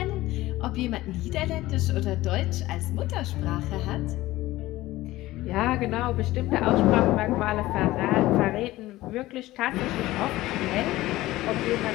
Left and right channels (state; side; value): quieter; right; 17.2 dB